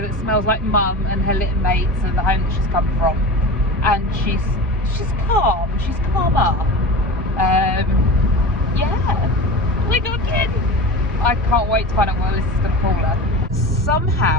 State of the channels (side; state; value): both; normal; correlation 0.30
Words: that smells like mum and her little mates and the home that she's come from. And she's calm. She's calmer. Yeah. We got in. I can't wait to find out what Alyssa's going to call her.